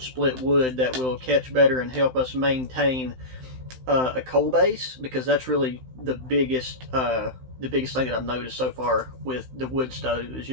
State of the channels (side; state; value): left; late; 16 ms